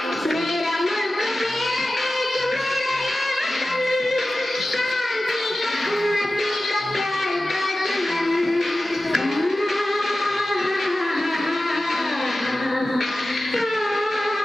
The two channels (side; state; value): both; normal; correlation 0.95